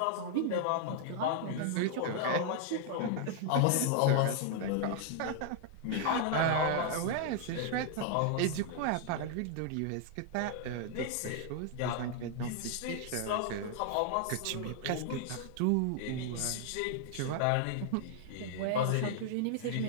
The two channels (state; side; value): different; both; correlation 0.00